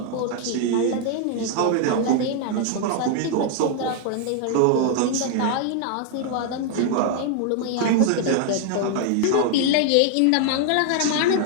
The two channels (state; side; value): different; both; correlation 0.00